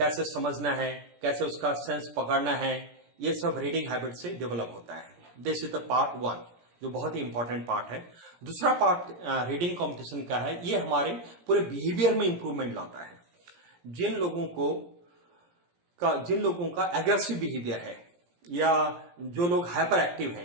समझना है, कैसे उसका सेंस पकड़ना है, ये सब रीडिंग हैबिट से डेवलप होता है। दिस इज द पार्ट 1, जो बहुत ही इंपॉर्टेंट पार्ट है। दूसरा पार्ट रीडिंग कंपटीशन का है, ये हमारे पूरे बिहेवियर में इंप्रूवमेंट लाता है। जिन लोगों का एग्रेसिव बिहेवियर है, या जो लोग हाइपर एक्टिव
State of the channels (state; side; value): late; left; 17 ms